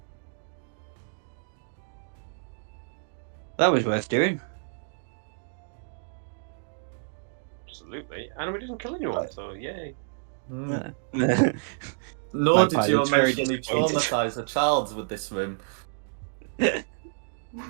That was worth doing. Absolutely. And we didn't kill anyone, so yay. Mm. My Nor did you pilot's very emotionally disappointed. traumatize a child with this room. Yeah.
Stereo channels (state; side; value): silent; left; digital silence